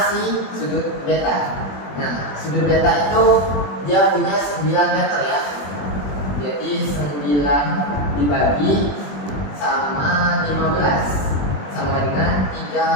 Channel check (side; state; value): right; late; 21 ms